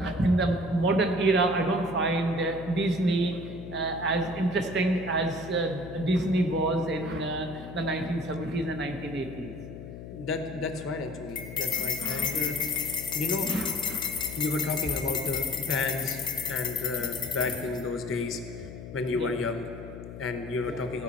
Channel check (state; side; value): noise; left; hum, 11 dB below the sound